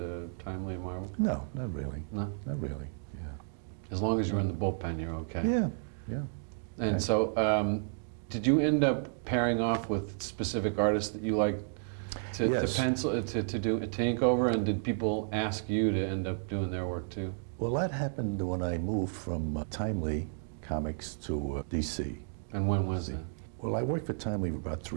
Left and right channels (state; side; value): silent; left; digital silence